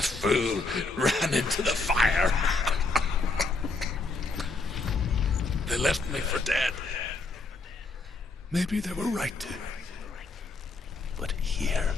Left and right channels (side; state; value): right; quieter; 3.6 dB